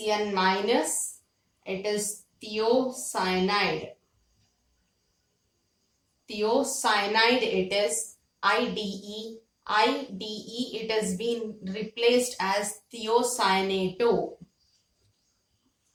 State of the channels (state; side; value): identical; both; correlation 1.00